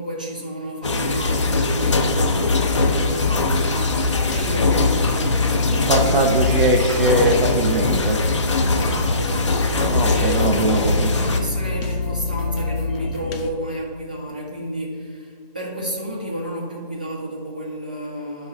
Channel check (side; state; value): both; inverted; correlation -0.47